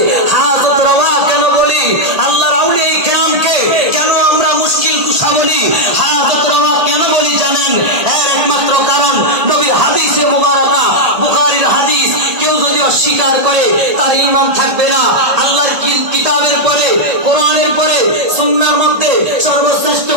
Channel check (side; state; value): left; late; 1.8 ms